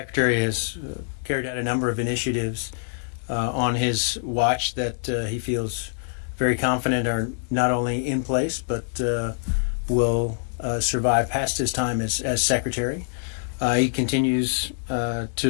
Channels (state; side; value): silent; right; digital silence